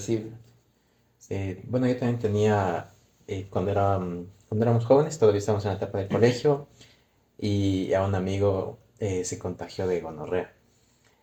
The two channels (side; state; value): both; identical; correlation 1.00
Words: Bueno, yo también tenía, cuando éramos jóvenes, todavía estábamos en la etapa del colegio, y a un amigo se contagió de gonorrea.